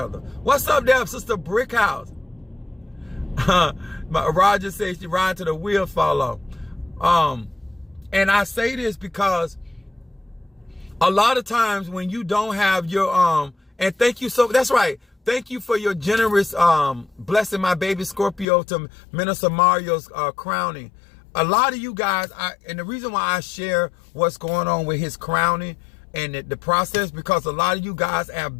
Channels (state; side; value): drops out; right; at 18.4 s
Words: What's up there, Sister Brickhouse? Roger says she ride till the wheel fall off. And I say this because a lot of times when you don't have your and thank you that's right. Thank you for your generous blessing my baby Scorpio to Minister Mario's crowning. A lot of you guys, and the reason why I share what's going on with his crowning and the process, because a lot of you guys